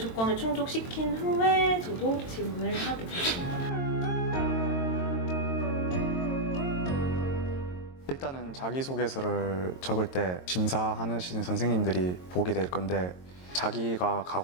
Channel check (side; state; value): right; late; 22 ms